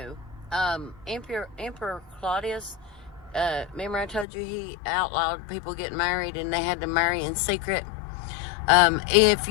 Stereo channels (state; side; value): drops out; right; at 4.2 s